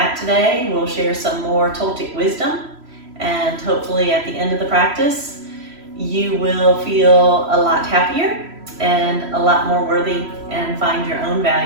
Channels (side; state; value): left; late; 3.0 ms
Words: today. We'll share some more Toltec wisdom, and hopefully at the end of the practice, you will feel a lot happier and a lot more worthy, and find your own